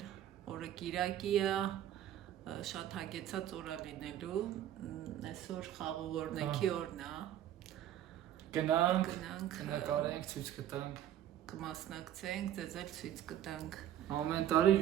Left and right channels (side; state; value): left; quieter; 11.4 dB